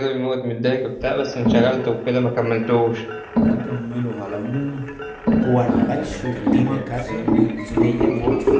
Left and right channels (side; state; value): both; identical; correlation 1.00